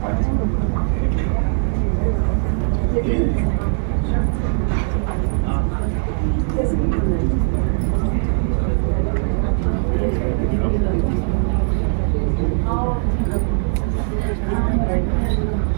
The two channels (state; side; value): silent; left; 63 dB below the other